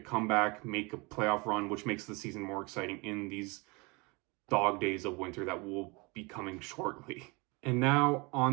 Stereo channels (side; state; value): left; quieter; 27.4 dB